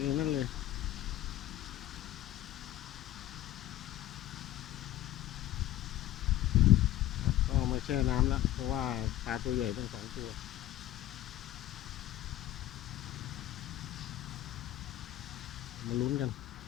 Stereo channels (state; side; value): quieter; right; 13.9 dB